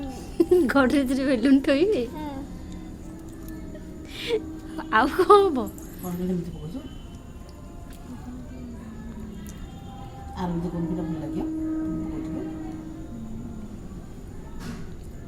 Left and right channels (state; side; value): identical; both; correlation 1.00